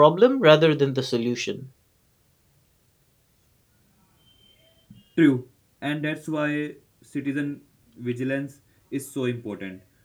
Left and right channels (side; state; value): both; identical; correlation 1.00